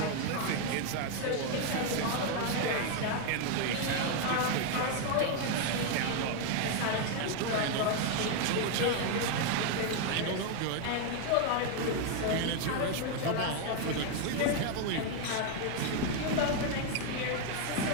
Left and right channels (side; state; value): both; different; correlation 0.01